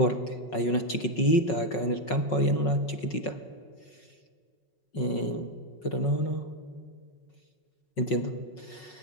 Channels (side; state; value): right; late; 5.4 ms